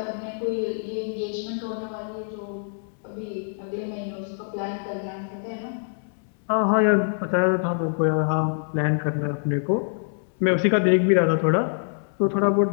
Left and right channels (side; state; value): right; silent; digital silence